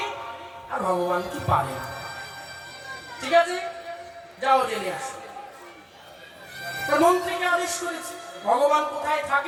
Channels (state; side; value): identical; both; correlation 1.00